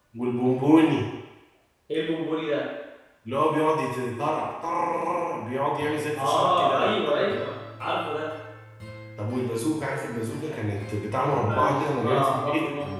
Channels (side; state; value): both; identical; correlation 1.00